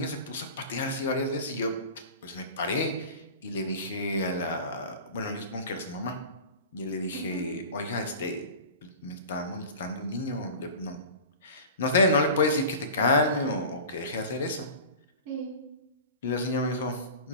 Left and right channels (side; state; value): both; inverted; correlation -0.36